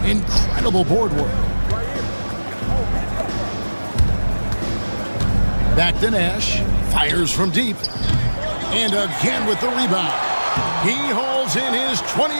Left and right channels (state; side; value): inverted; both; correlation -1.00